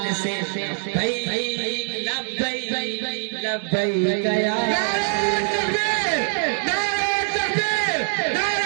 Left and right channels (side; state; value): left; silent; digital silence